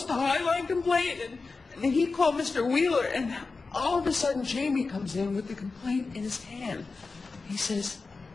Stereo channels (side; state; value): right; quieter; 4.1 dB